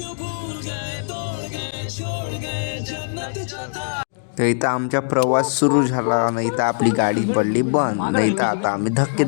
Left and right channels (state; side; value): silent; right; digital silence